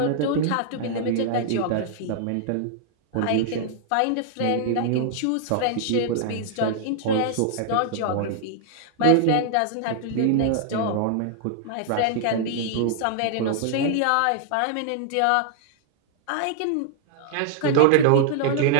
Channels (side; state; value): both; different; correlation -0.01